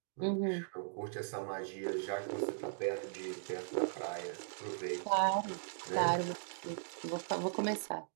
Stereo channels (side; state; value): left; silent; digital silence